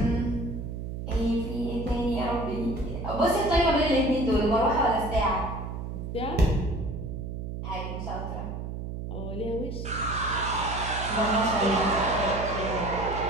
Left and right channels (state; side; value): noise; right; hum, 6 dB below the sound